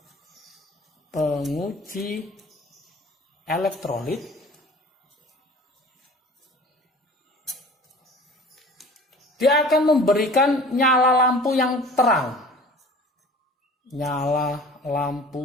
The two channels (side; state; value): both; normal; correlation 0.44